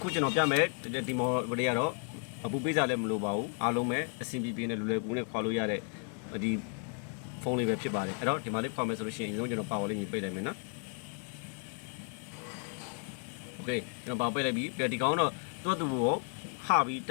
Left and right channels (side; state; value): right; quieter; 39.1 dB